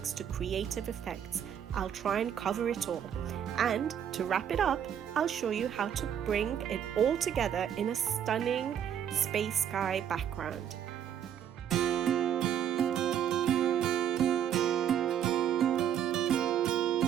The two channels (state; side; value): quieter; left; 9.3 dB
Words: to creative effects, I'll try and cover it all. And to wrap it up, I'll show you how to bring it all together in a stunning space sky background.